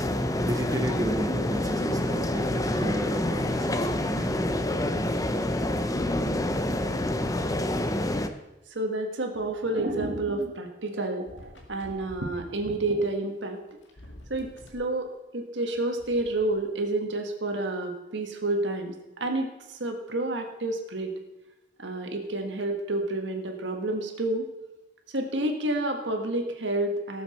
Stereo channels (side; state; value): both; normal; correlation 0.45